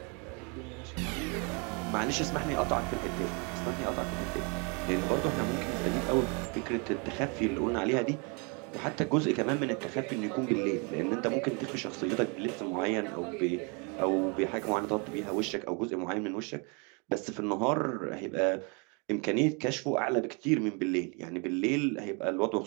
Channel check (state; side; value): quieter; left; 33.5 dB